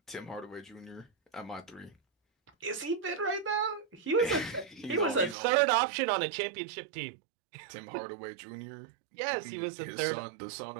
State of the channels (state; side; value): drops out; left; at 5.4 s